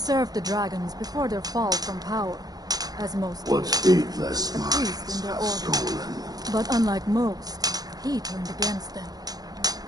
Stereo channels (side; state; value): left; late; 0.19 ms